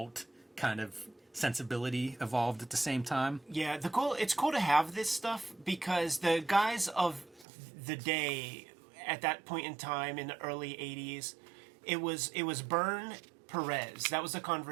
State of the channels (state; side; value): drops out; left; at 7.5 s